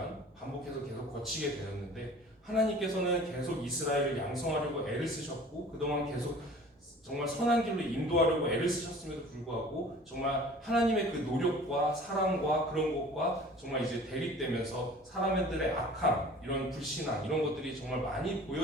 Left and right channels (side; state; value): both; normal; correlation 0.45